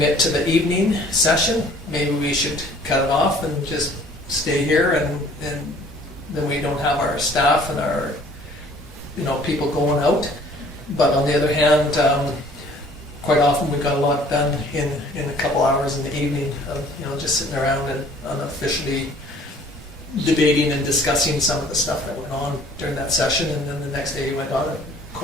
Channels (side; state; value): both; normal; correlation 0.54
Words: to the evening session, maybe we should cut it off and just stay here, and then we don't have our staff and our, you know, people going out. But on the other hand, quite often we got a lot done in a couple hours in the evening of, you know, just sitting around and unofficially debating and discussing some of the stuff that went on during that session, and then the next day you went on it.